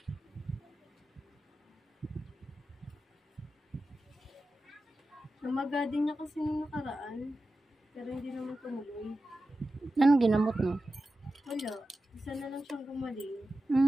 Namaga din niya kasi nung nakaraan. Pero hindi naman tumuloy. Anong ginamot mo? Wala. Isa na lang siyang gumaling.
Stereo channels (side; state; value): both; normal; correlation 0.93